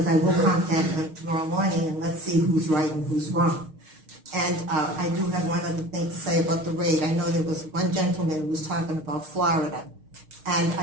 I will contact them tomorrow morning and let's see who's right and who's wrong. And I do have one other thing to say about the rate. I know there was one gentleman who was talking about Florida, and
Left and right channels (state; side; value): late; left; 6.4 ms